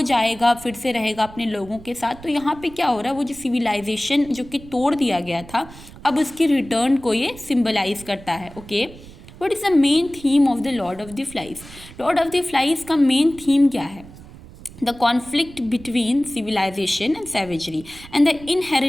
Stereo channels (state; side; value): noise; right; rumble, 18 dB below the sound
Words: जाएगा फिर से रहेगा अपने लोगों के साथ। तो यहाँ पे क्या हो रहा है, वो जो सिविलाइजेशन जो कि तोड़ दिया गया था, अब उसकी रिटर्न को ये सिम्बलाइज करता है। Okay, What is the main theme of the Lord of the Flies? Lord of the Flies का main theme क्या है? The conflict between civilization and savagery and the